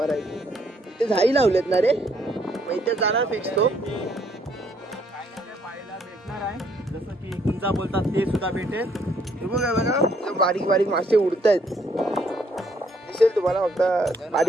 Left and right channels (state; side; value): normal; both; correlation 0.68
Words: इथे झाई लावलेत ना रे. मग इथे जाणार फिक्स तो. पाहायला भेटणार आहे. जसं की गुंजा बोलतात ते सुद्धा भेटेल. हे बघा बारीक बारीक मासे उडतायत. दिसेल तुम्हाला. फक्त